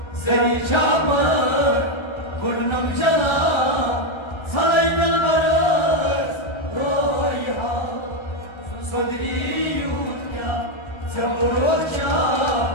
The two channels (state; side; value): late; right; 1.3 ms